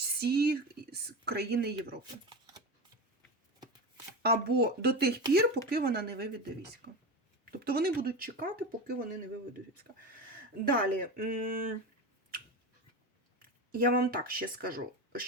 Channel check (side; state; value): both; normal; correlation 0.23